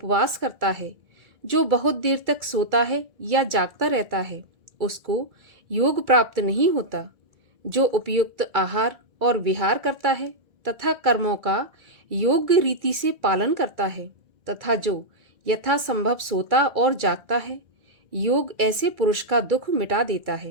करता है, जो बहुत देर तक सोता है या जागता रहता है, उसको योग प्राप्त नहीं होता। जो उपयुक्त आहार और विहार करता है तथा कर्मों का योग्य रीति से पालन करता है तथा जो यथासंभव सोता और जागता है, योग ऐसे पुरुष का दुख मिटा देता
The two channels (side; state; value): left; late; 2.3 ms